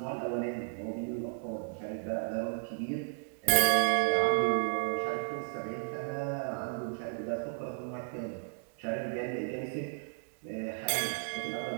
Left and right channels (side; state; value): left; silent; digital silence